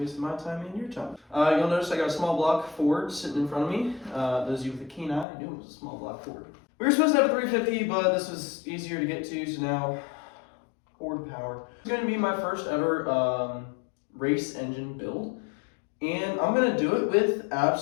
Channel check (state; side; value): drops out; right; at 5.2 s